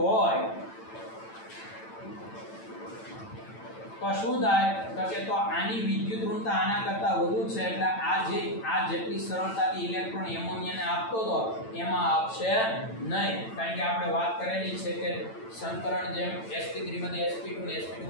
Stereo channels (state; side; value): late; right; 9.0 ms